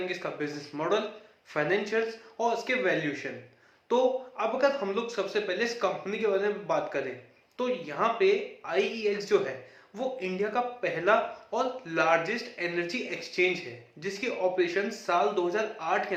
इसका बिजनेस मॉडल, फाइनेंशियल्स और इसके वैल्यूएशन। तो अब अगर हम लोग सबसे पहले इस कंपनी के बारे में बात करें, तो यहाँ पे IEX जो है वो इंडिया का पहला और लार्जेस्ट एनर्जी एक्सचेंज है, जिसके ऑपरेशन साल 2008 के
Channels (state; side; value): identical; both; correlation 1.00